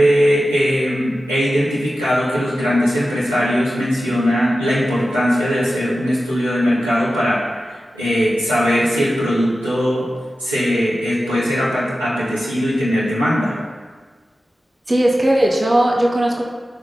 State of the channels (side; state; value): both; normal; correlation 0.93